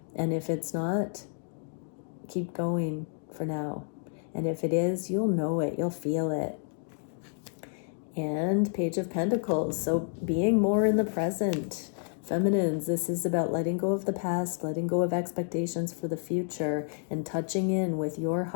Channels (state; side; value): silent; right; 58 dB below the other